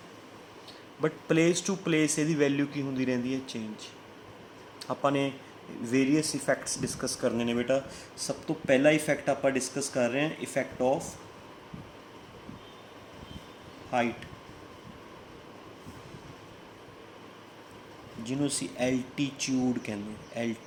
ਬਟ ਪਲੇਸ ਟੂ ਪਲੇਸ ਇਹਦੀ ਵੈਲਿਊ ਕੀ ਹੁੰਦੀ ਰਹਿੰਦੀ ਹੈ, ਚੇਂਜ। ਆਪਾਂ ਨੇ ਵੇਰੀਅਸ ਇਫੈਕਟਸ ਡਿਸਕਸ ਕਰਨੇ ਨੇ ਬੇਟਾ। ਸਭ ਤੋਂ ਪਹਿਲਾ ਇਫੈਕਟ ਆਪਾਂ ਡਿਸਕਸ ਕਰ ਰਹੇ ਹਾਂ, ਇਫੈਕਟ ਆਫ ਹਾਈਟ, ਜਿਹਨੂੰ ਅਸੀਂ ਐਲਟੀਚਿਊਡ ਕਹਿੰਦੇ ਹਾਂ।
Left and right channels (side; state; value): both; identical; correlation 1.00